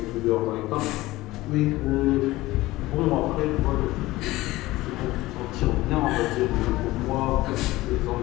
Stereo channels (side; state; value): right; quieter; 18.3 dB